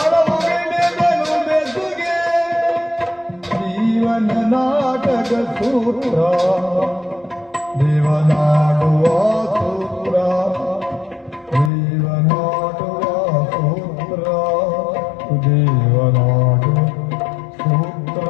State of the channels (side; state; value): right; drops out; at 11.7 s